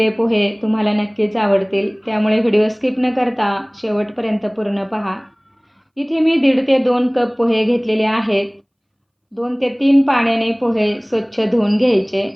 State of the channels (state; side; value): identical; both; correlation 1.00